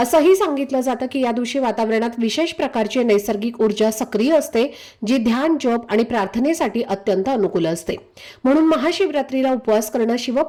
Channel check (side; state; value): both; identical; correlation 1.00